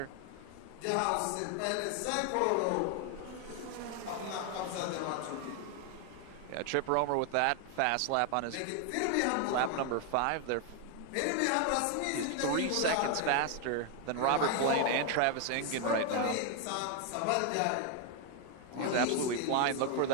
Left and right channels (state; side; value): different; both; correlation 0.01